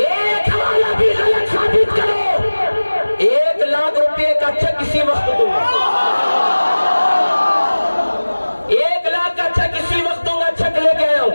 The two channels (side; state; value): both; inverted; correlation -1.00